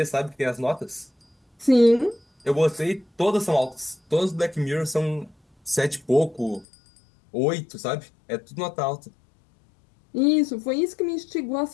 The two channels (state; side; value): drops out; right; at 6.7 s